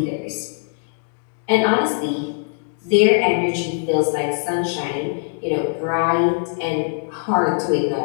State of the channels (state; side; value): silent; right; digital silence